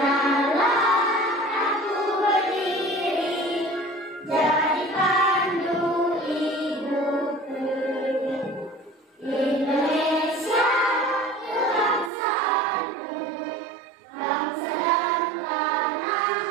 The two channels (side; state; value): left; drops out; at 12.1 s